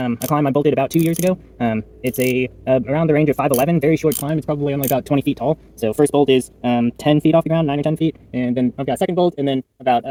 climb I bolted about 2 years ago. It's around the range of 5'11", very short climb. It's probably only about 20 feet tall. So first bolt is 10 feet off the ground, 9 or 10 feet, and then I've got a second bolt, and then about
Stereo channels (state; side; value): identical; both; correlation 1.00